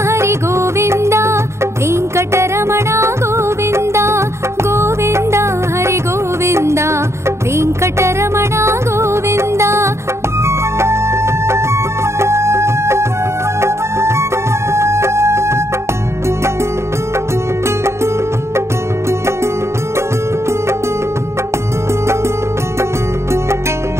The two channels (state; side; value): late; left; 0.13 ms